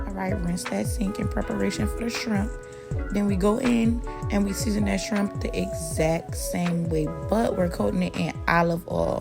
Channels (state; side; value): identical; both; correlation 1.00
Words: right, rinse that sink in preparation for the shrimp. Then we go in and we season that shrimp the exact same way, but we're coating it in olive